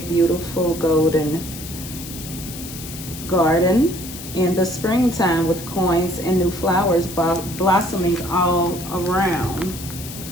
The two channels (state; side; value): noise; left; hiss, 12 dB below the sound